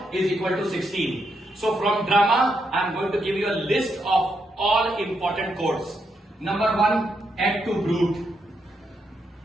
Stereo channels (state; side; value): normal; both; correlation 0.80